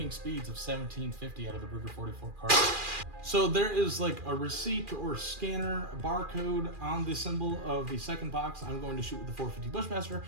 speeds of 1750 out of the Ruger 44 cartridge. So there is like a receipt or scanner barcode on the symbol of the second box. I'm going to shoot with the 450 Bushmaster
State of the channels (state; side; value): late; left; 2.4 ms